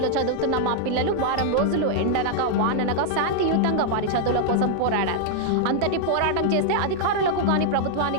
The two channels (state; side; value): different; both; correlation -0.01